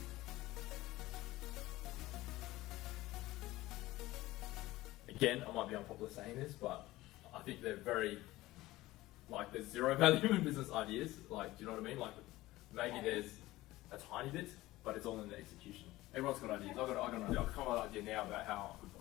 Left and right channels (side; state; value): right; quieter; 17.8 dB